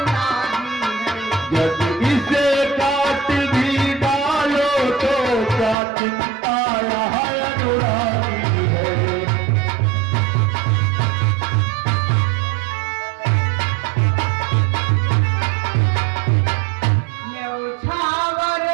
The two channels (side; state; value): left; drops out; at 5.8 s